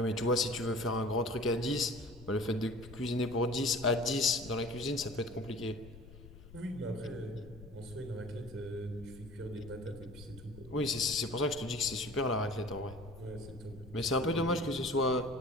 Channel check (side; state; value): left; noise; rumble, 17 dB below the sound